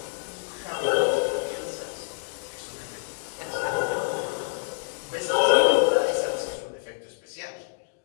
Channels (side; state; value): right; silent; digital silence